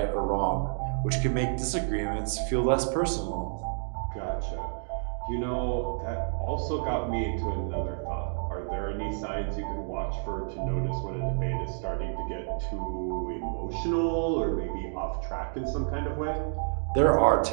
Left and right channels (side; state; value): left; silent; digital silence